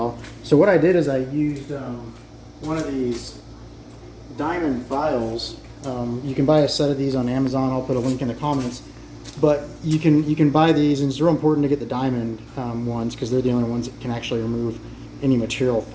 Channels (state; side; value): identical; both; correlation 1.00